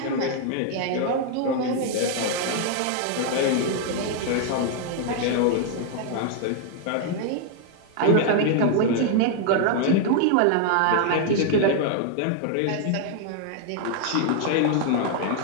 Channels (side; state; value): both; different; correlation 0.00